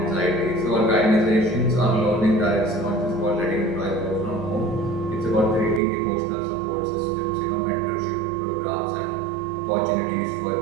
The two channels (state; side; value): drops out; left; at 5.8 s